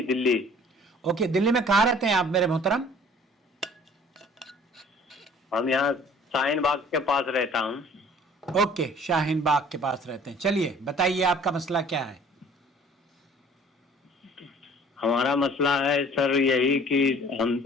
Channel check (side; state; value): both; normal; correlation 0.51